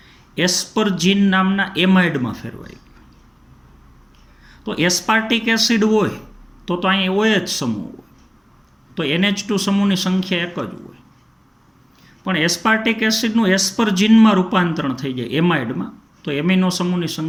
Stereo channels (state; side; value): identical; both; correlation 1.00